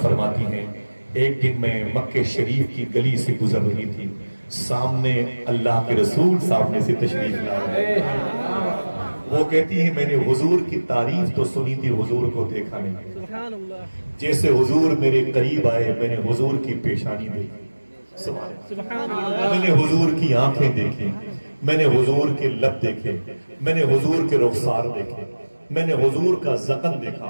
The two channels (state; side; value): inverted; both; correlation -1.00